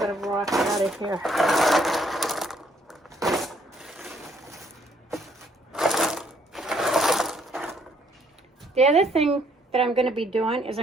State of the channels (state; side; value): normal; both; correlation 0.67